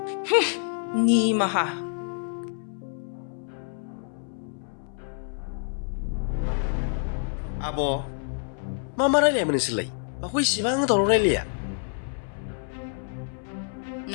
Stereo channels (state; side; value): silent; right; 60 dB below the other